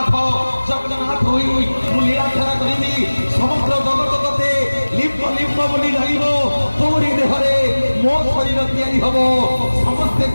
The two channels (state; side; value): inverted; both; correlation -1.00